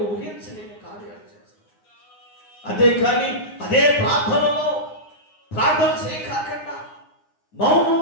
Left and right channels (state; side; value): late; right; 9.7 ms